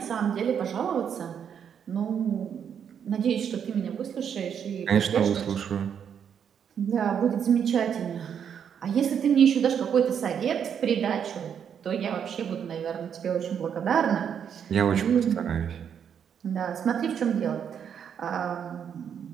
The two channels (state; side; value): quieter; left; 8.0 dB